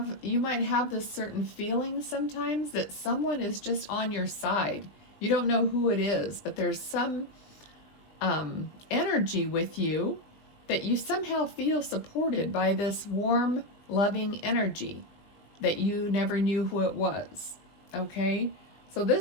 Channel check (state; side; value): late; right; 20 ms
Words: you might have this certain feeling sometimes that someone is just on your side. You don't know who it is, but there's some energy with you that you somehow feel supported by this warm, loving energy that you never knew who it was. Okay? So